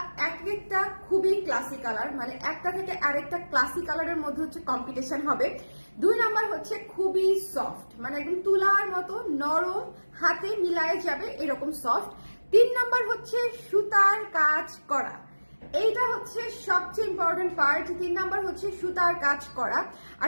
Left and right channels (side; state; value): both; inverted; correlation -1.00